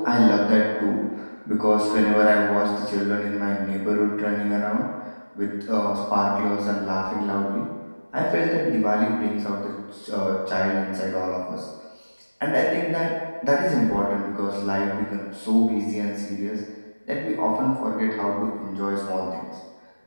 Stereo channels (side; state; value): both; inverted; correlation -1.00